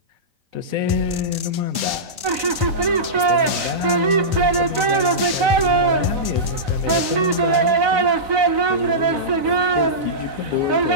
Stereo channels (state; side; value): late; left; 4.0 ms